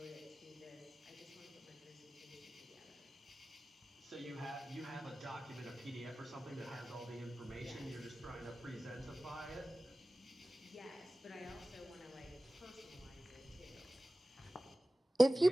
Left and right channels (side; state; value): both; normal; correlation 0.97